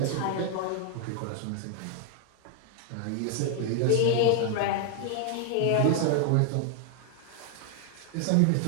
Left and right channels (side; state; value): both; different; correlation 0.00